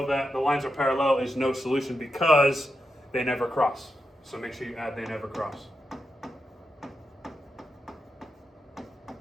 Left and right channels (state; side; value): normal; both; correlation 0.86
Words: that the lines are parallel is no solution because they never cross. So make sure you add they never cross.